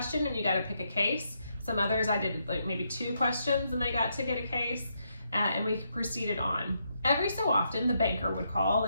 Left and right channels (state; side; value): inverted; both; correlation -0.79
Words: and you got to pick a case. Some others I did like maybe 2 questions and they got to get a case, and we proceeded on. Every so often the banker would call